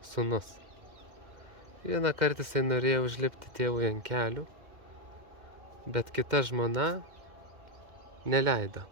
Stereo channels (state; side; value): late; left; 2.1 ms